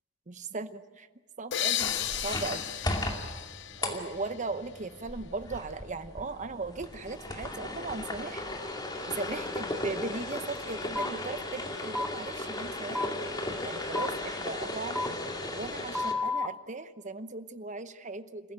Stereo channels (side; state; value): both; normal; correlation 0.25